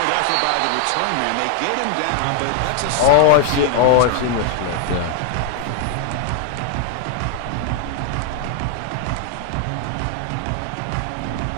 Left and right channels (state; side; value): different; both; correlation 0.00